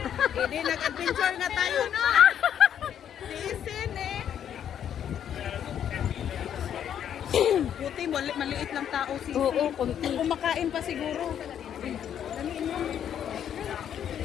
Hindi, nag-adventure nga tayo, no? Tiisin, eh. Buti, maliit lang tao, sisi. Oo, konti. Kumakain pa siguro.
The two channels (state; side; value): quieter; right; 9.4 dB